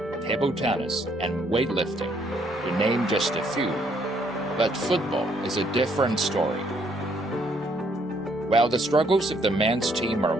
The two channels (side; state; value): both; normal; correlation 0.68